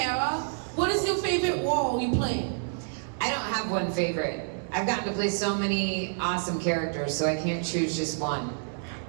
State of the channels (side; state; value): left; silent; 59 dB below the other